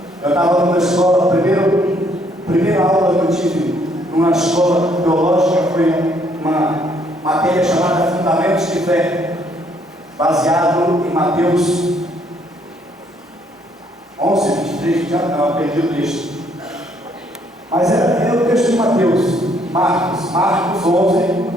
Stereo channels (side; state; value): both; normal; correlation 0.67